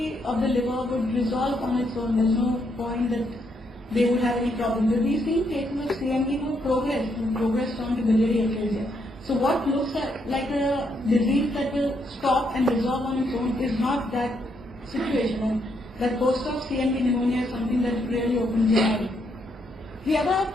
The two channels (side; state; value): both; normal; correlation 0.75